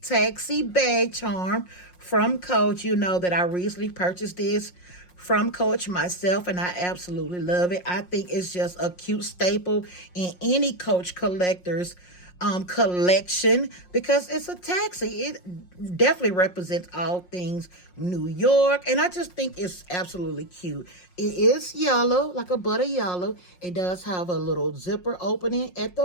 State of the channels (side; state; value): right; late; 5.5 ms